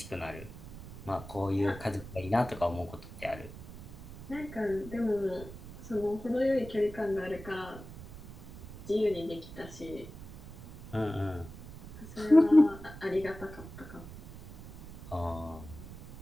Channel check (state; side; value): noise; right; rumble, 14 dB below the sound